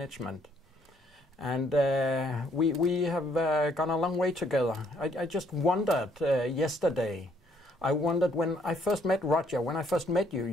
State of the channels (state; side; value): normal; both; correlation 0.67